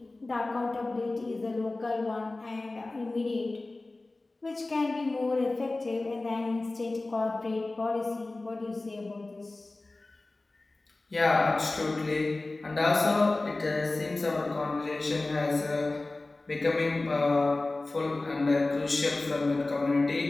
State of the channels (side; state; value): right; quieter; 3.1 dB